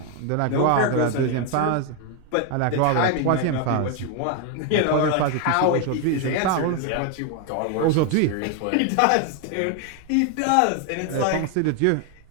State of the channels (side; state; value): both; different; correlation 0.01